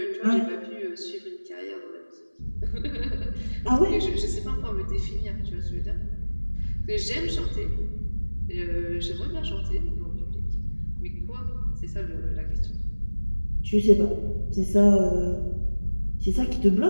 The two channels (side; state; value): both; inverted; correlation -1.00